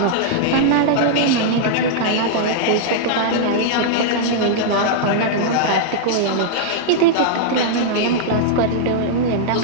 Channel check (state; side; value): different; both; correlation -0.01